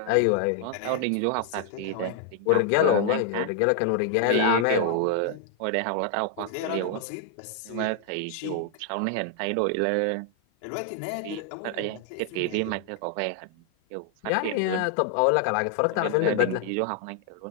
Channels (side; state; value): both; different; correlation 0.00